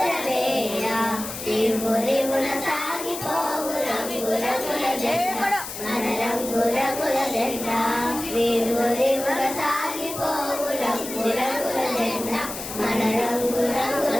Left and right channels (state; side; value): noise; left; hiss, 8 dB below the sound